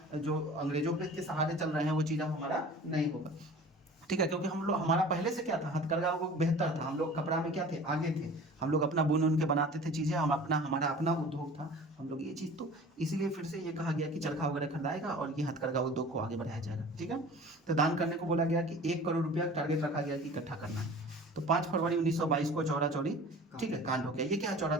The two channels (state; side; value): normal; both; correlation 0.42